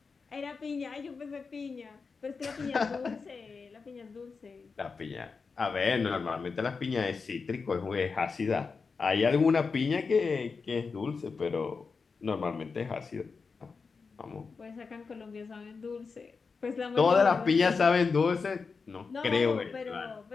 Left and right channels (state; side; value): quieter; right; 4.9 dB